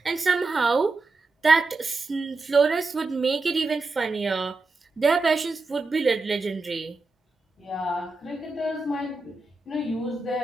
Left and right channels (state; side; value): quieter; left; 3.5 dB